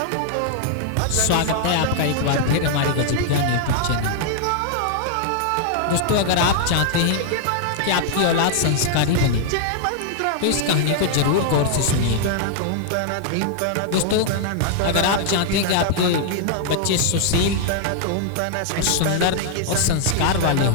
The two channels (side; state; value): both; different; correlation 0.00